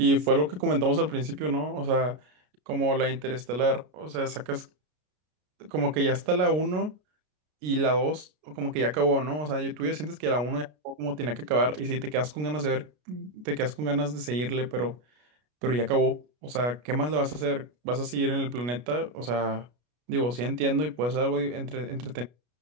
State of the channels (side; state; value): left; late; 33 ms